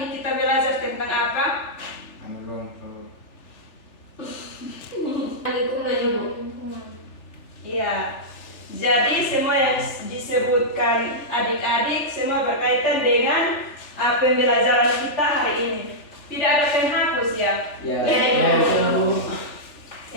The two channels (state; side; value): late; right; 3.4 ms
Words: ini kita belajar tentang apa? Lingkungan, Ibu. Iya. Jadi semua yang disebutkan adik-adik semua berkaitan dengan pembelajaran kita hari ini. Tidak ada penghapus ya? Ya, Ibu.